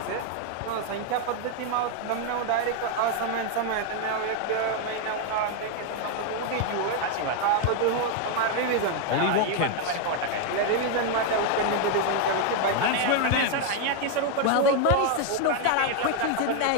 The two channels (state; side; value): different; both; correlation 0.00